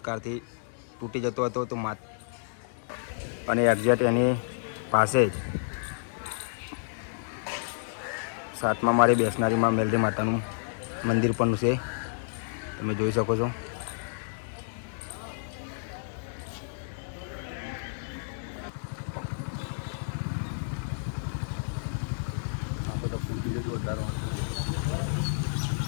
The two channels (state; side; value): silent; right; digital silence